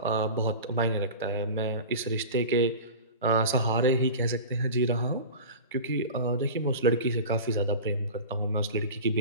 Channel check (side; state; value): both; inverted; correlation -0.33